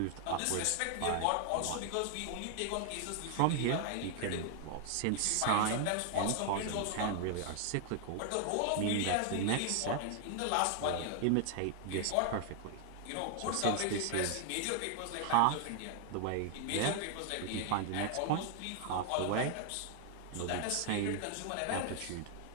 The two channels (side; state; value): both; different; correlation 0.00